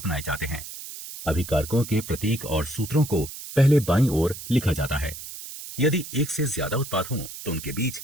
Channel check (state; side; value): noise; right; hiss, 11 dB below the sound